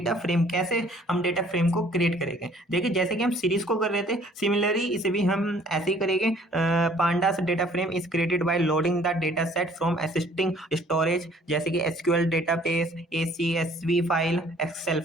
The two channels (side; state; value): both; normal; correlation 0.57